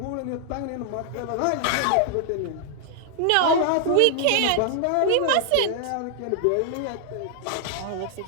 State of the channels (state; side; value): different; both; correlation 0.00